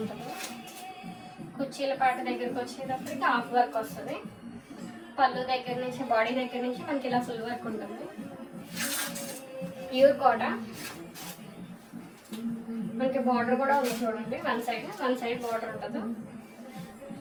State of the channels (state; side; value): identical; both; correlation 1.00